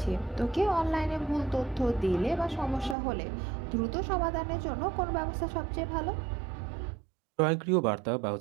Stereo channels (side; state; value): left; drops out; at 3.0 s